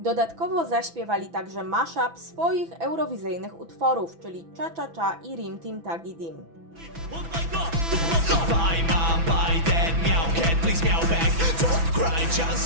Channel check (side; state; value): left; late; 6.0 ms